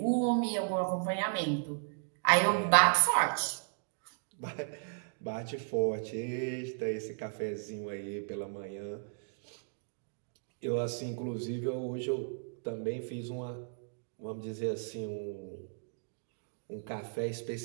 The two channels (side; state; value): left; silent; digital silence